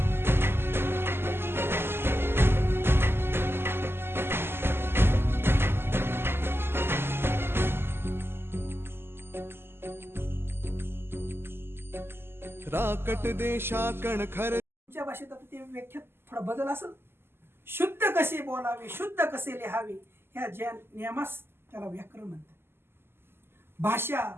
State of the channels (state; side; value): late; left; 0.11 ms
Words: राकट देशाकण खर तुमच्या भाषेत आता ते व्याख्यात थोडा बदल असेल. शुद्ध कसे बोलावे, शुद्ध कसे लिहावे, ह्या ज्या नियमास त्याला व्याकरण म्हणतात. भाषा